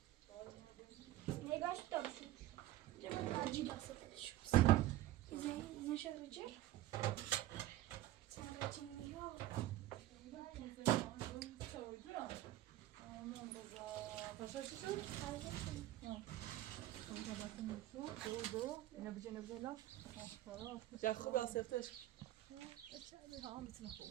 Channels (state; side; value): quieter; left; 15.1 dB